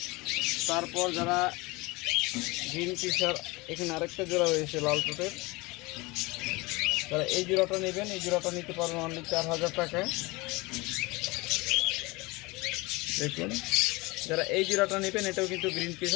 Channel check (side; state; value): right; quieter; 23.8 dB